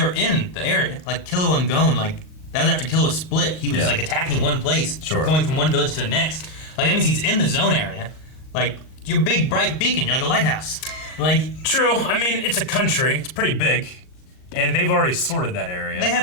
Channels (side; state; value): right; late; 38 ms